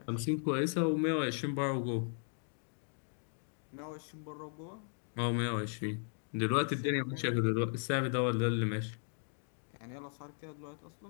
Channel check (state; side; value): silent; right; 53 dB below the other